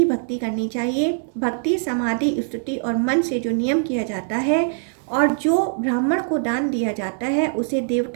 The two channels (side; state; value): left; silent; 64 dB below the other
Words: भक्ति करनी चाहिए। भक्ति, समाधि, स्तुति और मन से जो नियम किया जाता है और जो ब्राह्मण को दान दिया जाता है, उसे